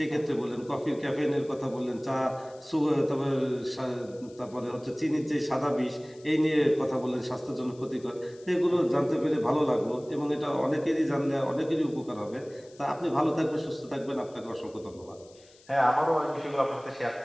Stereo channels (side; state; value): left; noise; hiss, 27 dB below the sound